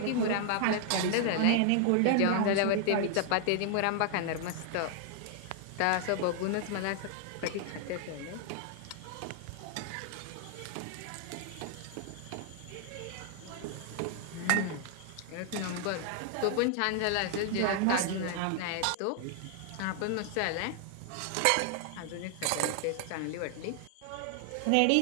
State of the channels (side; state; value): both; different; correlation 0.00